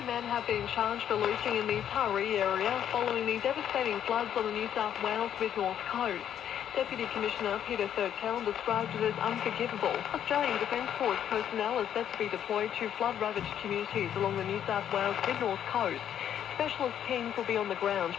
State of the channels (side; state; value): right; quieter; 9.8 dB